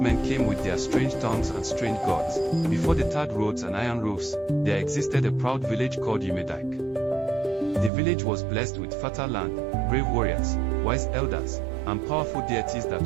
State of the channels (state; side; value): drops out; left; at 7.9 s